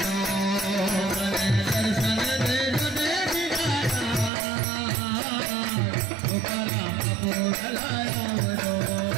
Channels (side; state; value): left; drops out; at 4.3 s